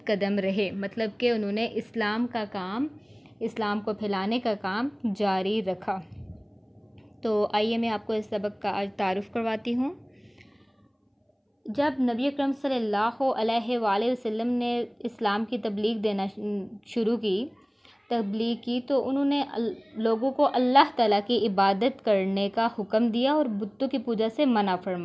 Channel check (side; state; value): both; identical; correlation 1.00